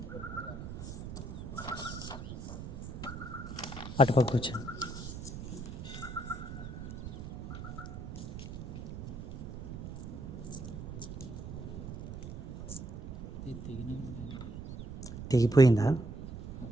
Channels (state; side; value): noise; right; rumble, 9 dB below the sound